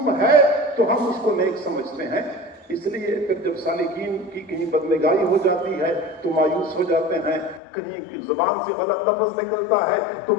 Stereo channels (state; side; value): drops out; right; at 7.6 s